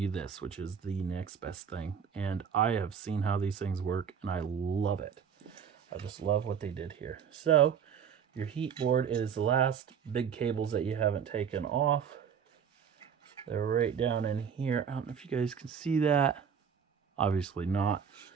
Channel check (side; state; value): left; quieter; 7.4 dB